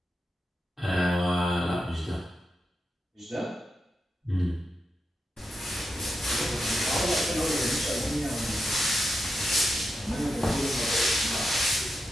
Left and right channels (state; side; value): normal; both; correlation 0.87